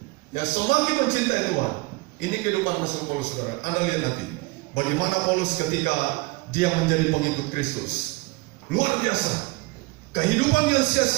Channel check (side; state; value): left; quieter; 24.3 dB